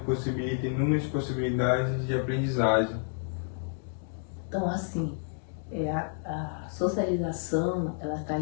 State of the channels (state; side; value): silent; right; digital silence